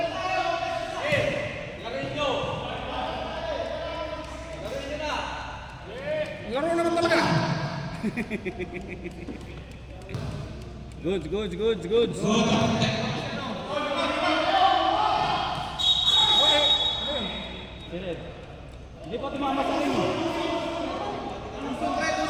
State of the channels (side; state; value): both; identical; correlation 1.00